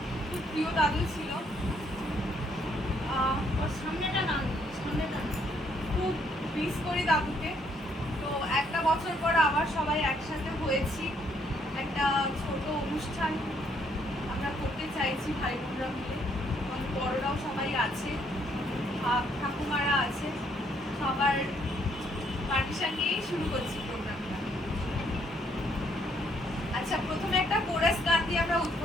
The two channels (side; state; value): both; normal; correlation 0.69